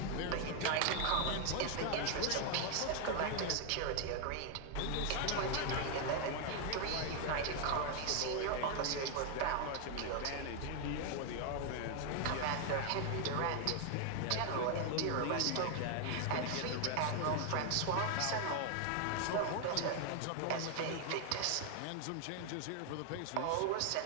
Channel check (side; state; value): both; different; correlation 0.00